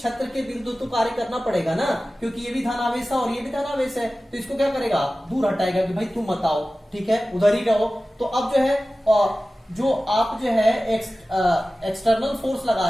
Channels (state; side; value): normal; both; correlation 0.96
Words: के विरुद्ध तो कार्य करना पड़ेगा ना, क्योंकि ये भी धनावेश है और ये भी धनावेश है, तो इसको क्या करेगा, दूर हटाएगा कि भाई तुम मत आओ। ठीक है, उधर ही रहो। तो अब जो है जो आप जो है एक्सटर्नल फोर्स